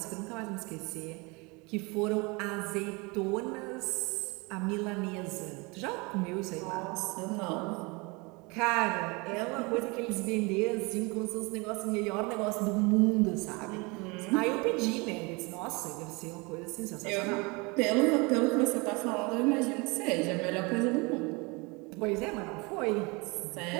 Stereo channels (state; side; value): quieter; left; 27.5 dB